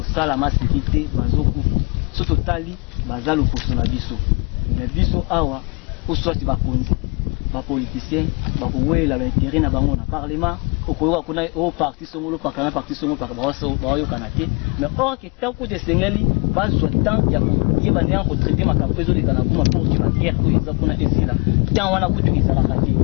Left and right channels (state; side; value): quieter; right; 31.1 dB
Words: masikite bazokufa so totali bazalo poso na biso mais biso awa oswati bakonzi ba politicien bakowela ba intérêt na bango na parlement okoyoka kuna o parti songolo pakana parti songolo pakaba ba yo kanate mais or que tant que de sengeli bazwa tant ya ko yeba ndanga ko traiter makampezo de kana kuma pour que la guerre ko eza kuna esila tant wana kutu ezala kati